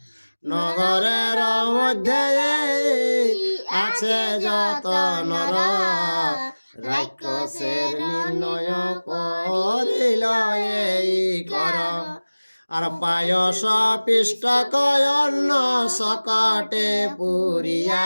নগরের মধ্যে আছে যত নর, রাক্ষসের নির্ণয় করিল এই কর, আর পায়স পিষ্ট কয়ন্ন সকটে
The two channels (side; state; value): both; inverted; correlation -1.00